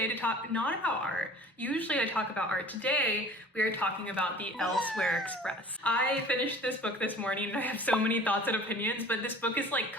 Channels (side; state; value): both; normal; correlation 0.46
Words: to talk not about art. Usually I talk about art. Today we are talking about the Elsewhere Express. I finished this book this morning and I have so many thoughts and opinions, but this book has like